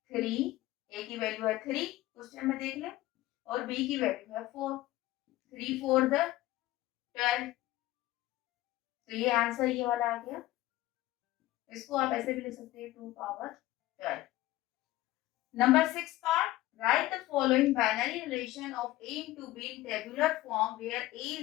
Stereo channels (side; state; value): right; quieter; 16.9 dB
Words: 3, ए की वैल्यू है 3 क्वेश्चन में देख लें, और बी की वैल्यू है 4, 3 4 12, तो ये आंसर ये वाला आ गया। इसको आप ऐसे भी लिख सकते हैं 2 power 12। Number 6 part, right the following binary relation of A into B in tabular form where A